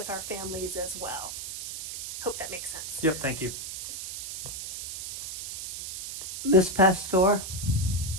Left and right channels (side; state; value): right; noise; hiss, 8 dB below the sound